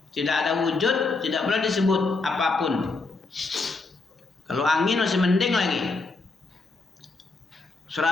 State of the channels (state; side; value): quieter; right; 3.7 dB